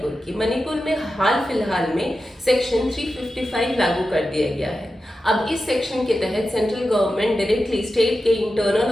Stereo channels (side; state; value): both; normal; correlation 0.91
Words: की। मणिपुर में हाल फिलहाल में सेक्शन 355 लागू कर दिया गया है। अब इस सेक्शन के तहत सेंट्रल गवर्नमेंट डायरेक्टली स्टेट के इंटरनल